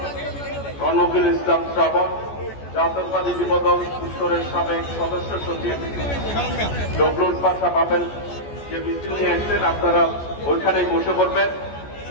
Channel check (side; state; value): right; late; 14 ms